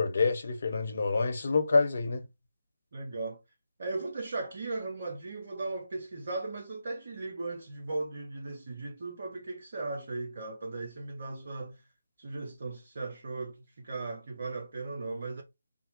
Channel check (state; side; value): inverted; both; correlation -0.87